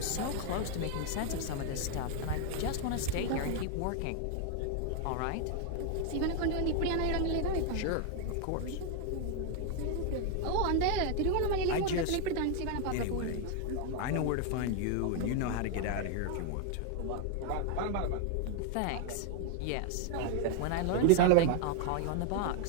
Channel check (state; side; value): different; both; correlation 0.01